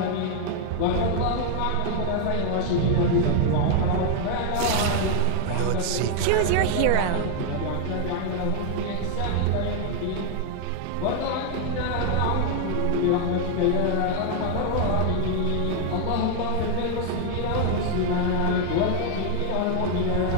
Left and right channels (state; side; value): different; both; correlation 0.00